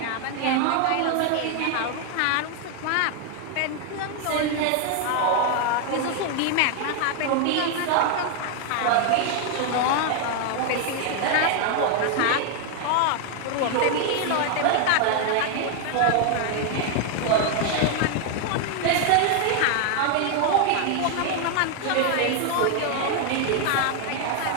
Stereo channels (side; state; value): both; different; correlation 0.00